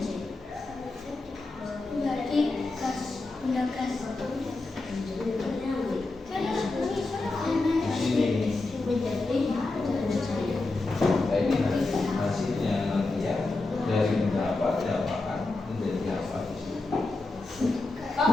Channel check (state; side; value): quieter; right; 3.2 dB